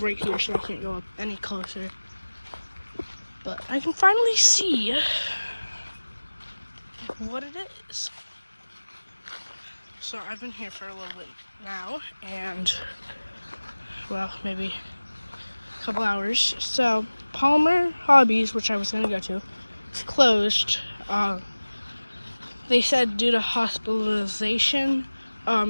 right here, so I can't go up any closer. But I can finally see what it is. So I've been here for a little bit now, and well, maybe a couple hours. So Palmer Hobbies, which I was gonna go to, is closed. They said due to hospitalization.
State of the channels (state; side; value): inverted; both; correlation -1.00